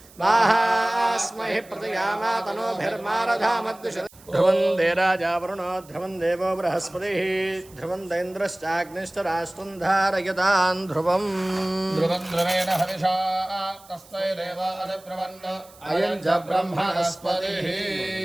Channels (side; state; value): right; noise; hiss, 24 dB below the sound